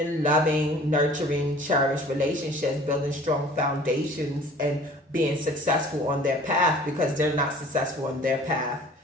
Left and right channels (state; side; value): normal; both; correlation 0.48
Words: loving, nurturing, cherished relationships, building strong foundations and being successful on their path because they're not successful on their path.